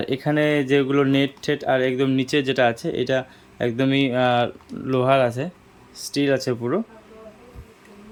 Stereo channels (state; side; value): identical; both; correlation 1.00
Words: এখানে যেগুলো নেট টেট আর একদম নিচে যেটা আছে এটা একদমই লোহার আছে, স্টিল আছে পুরো।